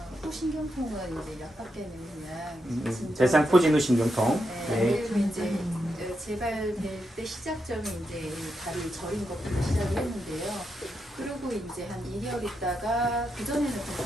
호신경통은 이제 약밖에는 그냥 진짜 대상포진후 신경통. 네, 네. 그리고 이제 재발될 때 시작점이 이제 다리 저린 것부터 시작을 했는데요. 그리고 이제 한 2개월 있다가 그 전에는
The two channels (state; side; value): normal; both; correlation 0.84